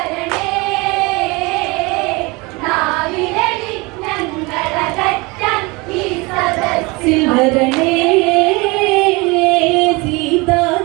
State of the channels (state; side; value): quieter; left; 25.6 dB